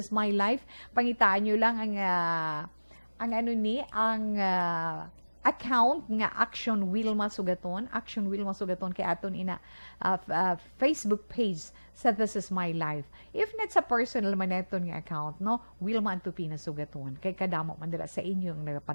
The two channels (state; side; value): inverted; both; correlation -1.00